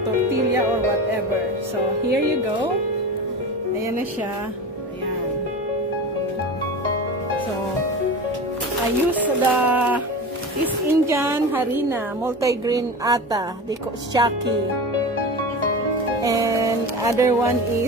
tortilla or whatever. So here you go. Ayan na siya. Ayan. So I use the East Indian harina, multigrain atta, they call shaki, and other one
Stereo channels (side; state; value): both; normal; correlation 0.29